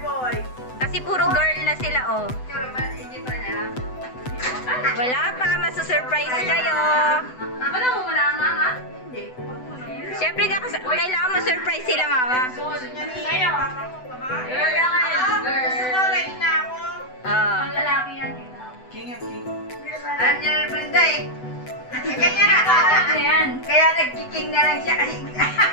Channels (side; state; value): right; late; 7.9 ms